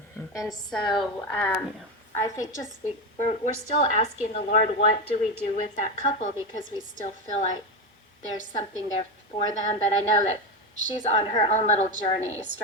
And so I think just we're still asking the Lord, what do we do with that couple? Because we still feel like there's something there for them. But I know that she's on her own little journey,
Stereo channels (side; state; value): both; normal; correlation 0.14